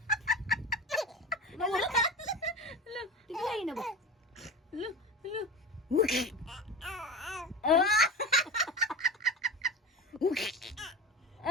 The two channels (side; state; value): both; normal; correlation 0.29